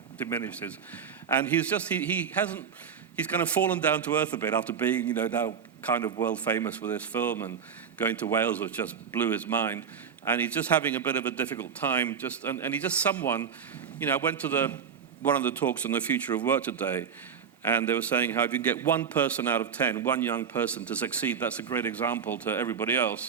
diminishes. And he's just, he's kind of fallen down to earth a bit after being, now kind of world famous with this film, and going to Wales, which just blew his mind. And he's just having a bit of a difficult time. And he's just someone, I went to one of the talks on the future of work today, and they were saying how if you can get 1 person out of 10, one young person to succeed, that's a great example to everybody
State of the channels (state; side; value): quieter; left; 7.2 dB